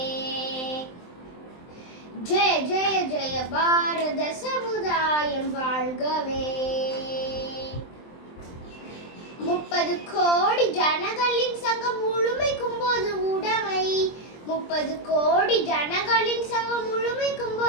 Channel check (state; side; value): late; right; 23 ms